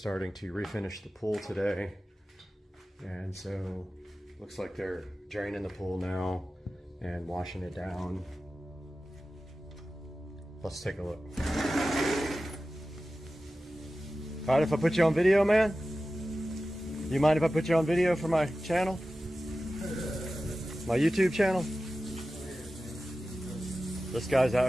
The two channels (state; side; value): normal; both; correlation 0.94